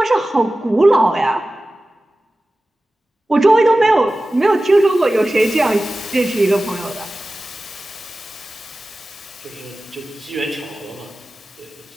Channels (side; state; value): both; normal; correlation 0.96